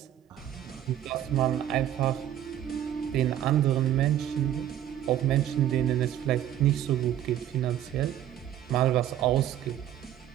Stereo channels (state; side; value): quieter; left; 11.4 dB